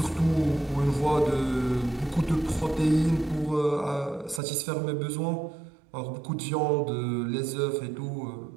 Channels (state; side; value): drops out; left; at 4.4 s